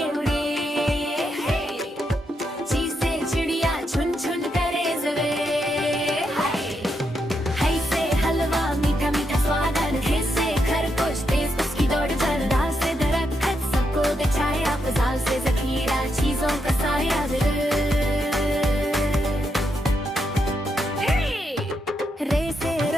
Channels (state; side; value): normal; both; correlation 0.81